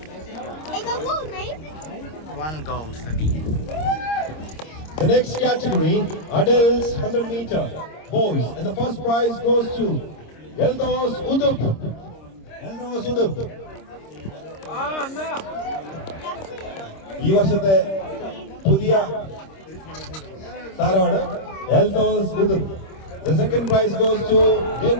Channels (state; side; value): late; right; 26 ms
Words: Hey, go gold, mate. 1 gold for me. The next category, adults 100 meter, boys. And the first prize goes to Eldos Udup. Eldos Udup. ഈ വർഷത്തെ പുതിയ താരമാണ് Eldhose ഉദുപ്. The second prize goes to